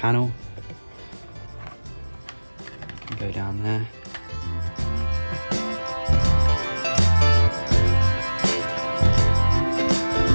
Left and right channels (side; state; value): both; inverted; correlation -1.00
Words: Go down there.